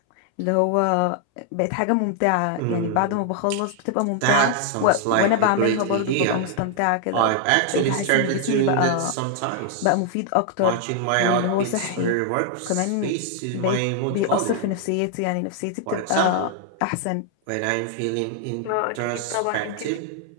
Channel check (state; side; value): different; both; correlation 0.00